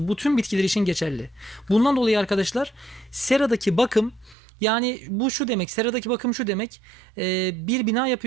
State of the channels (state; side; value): drops out; left; at 4.4 s